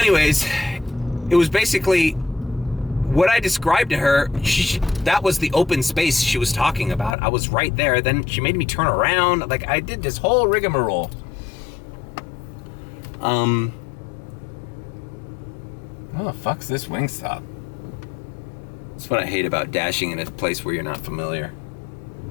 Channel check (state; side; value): drops out; right; at 7.2 s